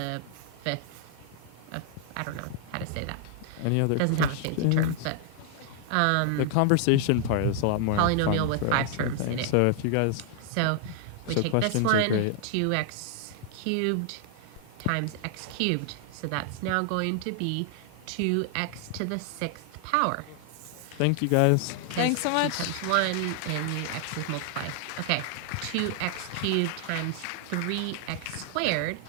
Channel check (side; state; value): both; different; correlation 0.00